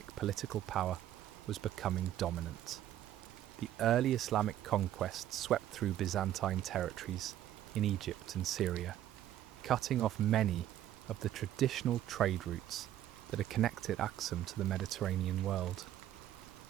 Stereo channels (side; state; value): left; quieter; 12.2 dB